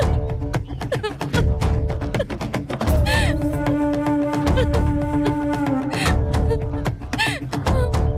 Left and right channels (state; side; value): identical; both; correlation 1.00